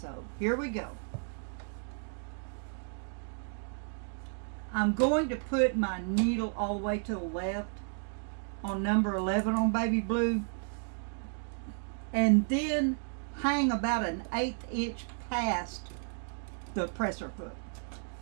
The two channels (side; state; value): left; silent; 56 dB below the other